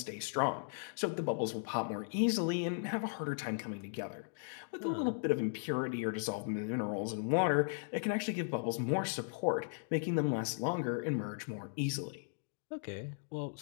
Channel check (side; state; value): right; silent; digital silence